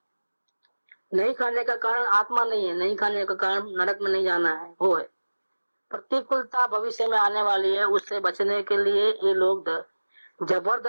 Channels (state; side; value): inverted; both; correlation -1.00